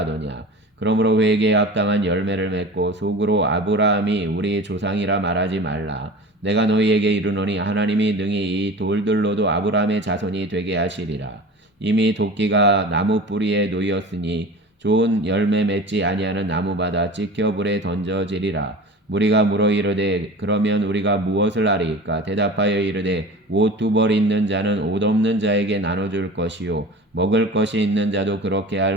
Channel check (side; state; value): both; normal; correlation 0.37